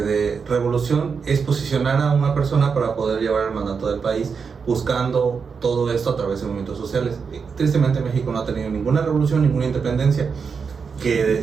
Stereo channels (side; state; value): left; quieter; 5.7 dB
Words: revolución, es posicionar a una persona para poder llevar el mandato del país, buscando todo esto a través de movimientos sociales. Tristemente México no ha tenido ninguna revolución, ninguna independencia,